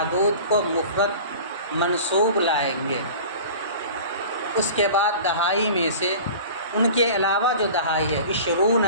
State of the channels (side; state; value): both; inverted; correlation -0.40